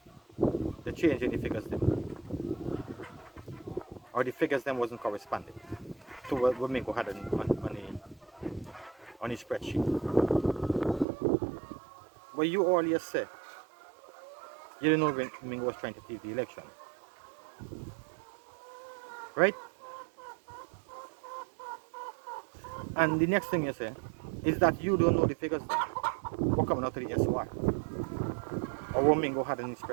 the change in the figures them, or the figures them wasn't corresponding to what Mingo had on his spreadsheet. But you earlier said you didn't know when Mingo was trying to thief the election, right? And the next thing you say is that you don't know the figures then. What coming out of the SOR, or what Mingo had in his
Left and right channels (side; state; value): left; drops out; at 11.1 s